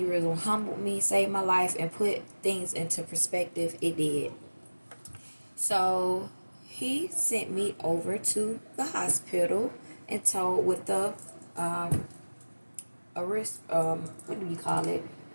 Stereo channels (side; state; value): both; inverted; correlation -1.00